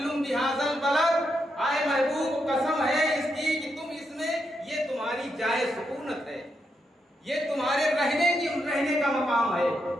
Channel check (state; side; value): normal; both; correlation 0.82